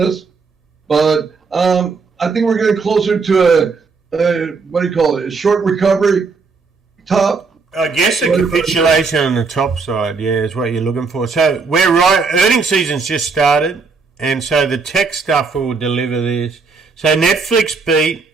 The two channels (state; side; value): quieter; left; 4.7 dB